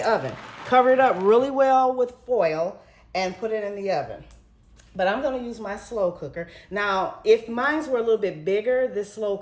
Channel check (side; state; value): both; identical; correlation 1.00